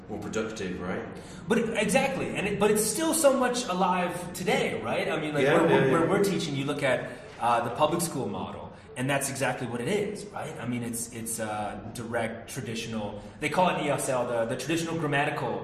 productive, right? Exactly. But it's still so much alive today, right? I mean, where we're teaching, you look at the public school model, and that's exactly what it is, right? I mean, it's direct, traditional. They call it ESL the traditional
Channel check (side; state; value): both; identical; correlation 1.00